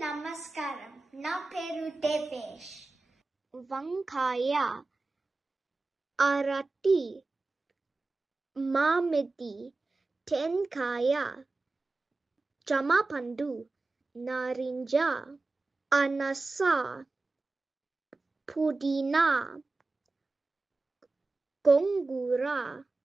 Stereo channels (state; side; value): quieter; left; 3.4 dB